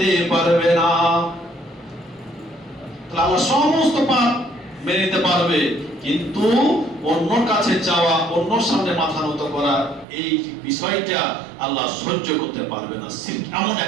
পারবে না। আল্লাহ সমস্ত পাপ মেনে নিতে পারবে, কিন্তু অন্যর কাছে চাওয়া, অন্যর সামনে মাথা নত করা, এই বিষয়টা আল্লাহ সহ্য করতে পারবে না। শিরক এমন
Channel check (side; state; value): left; drops out; at 10.1 s